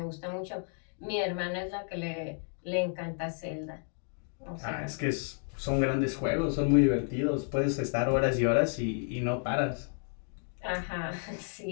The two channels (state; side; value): silent; right; 57 dB below the other